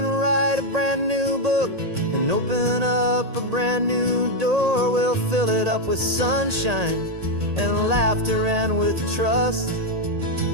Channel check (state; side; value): late; left; 1.8 ms